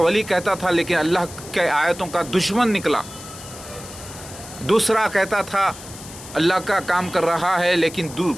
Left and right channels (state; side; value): noise; left; hiss, 15 dB below the sound